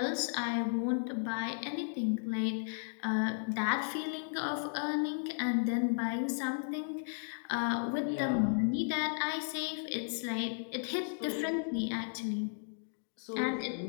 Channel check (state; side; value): silent; right; digital silence